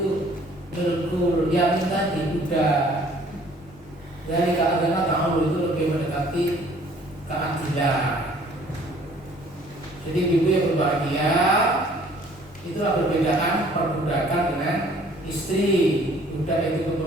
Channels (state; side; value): noise; left; rumble, 24 dB below the sound